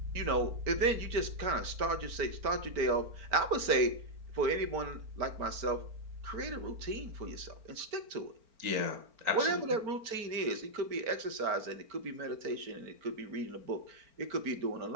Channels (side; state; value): left; late; 4.4 ms